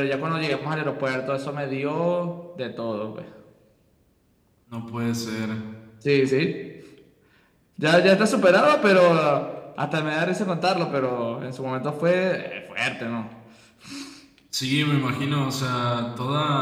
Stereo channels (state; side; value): identical; both; correlation 1.00